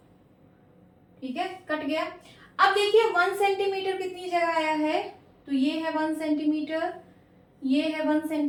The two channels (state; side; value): identical; both; correlation 1.00